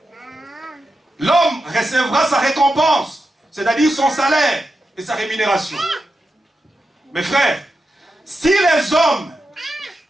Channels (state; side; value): normal; both; correlation 0.89